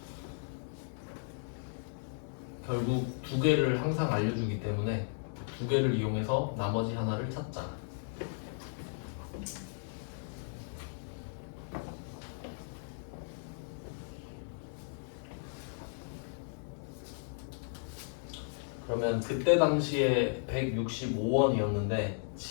결국 두 개를 항상 알려주기 때문에 두 개를 이용해서 나머지 하나를 찾자. 그러면 그때 당시에 165원이었는데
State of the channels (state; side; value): silent; right; digital silence